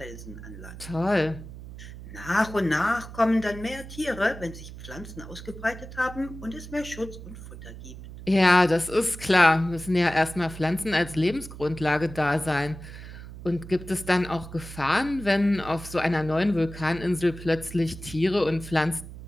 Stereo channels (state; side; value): noise; right; hum, 13 dB below the sound